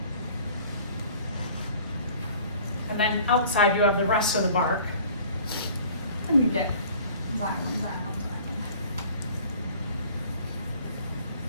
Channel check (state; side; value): inverted; both; correlation -0.49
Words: And then outside you have the rest of the bark. And you get xylem.